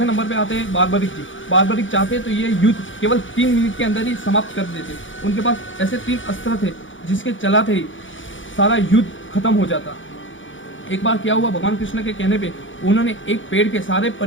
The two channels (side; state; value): right; late; 0.56 ms